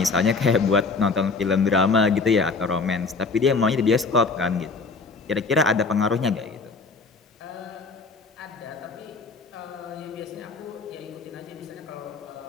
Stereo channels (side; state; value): right; quieter; 4.2 dB